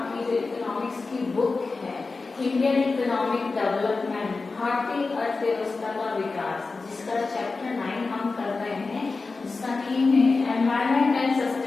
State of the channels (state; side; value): quieter; right; 4.0 dB